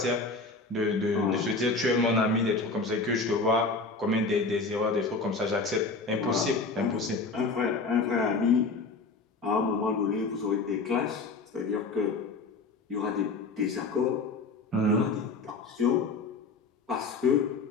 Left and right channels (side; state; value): right; quieter; 3.8 dB